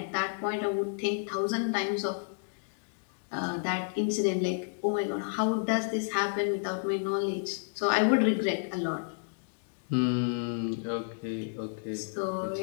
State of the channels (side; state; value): right; silent; digital silence